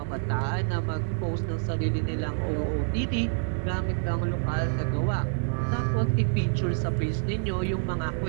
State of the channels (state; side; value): silent; left; 60 dB below the other